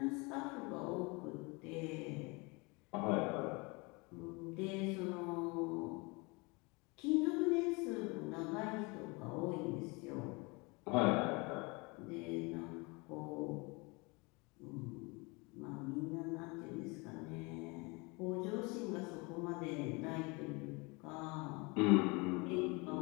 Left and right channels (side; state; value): right; quieter; 27.8 dB